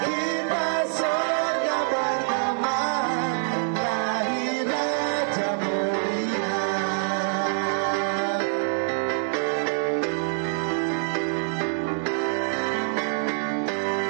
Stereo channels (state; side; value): silent; left; digital silence